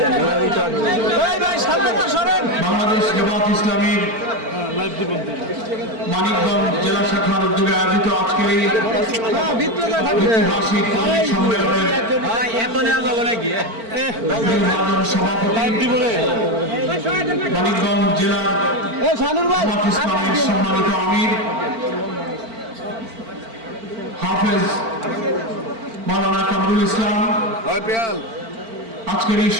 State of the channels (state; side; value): late; left; 4.5 ms